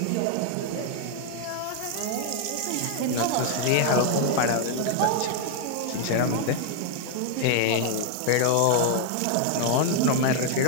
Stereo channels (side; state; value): both; different; correlation 0.00